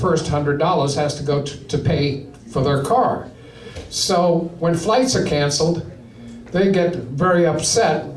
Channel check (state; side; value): identical; both; correlation 1.00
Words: $100 has to go to pay for their car. So when flights are canceled, they get very upset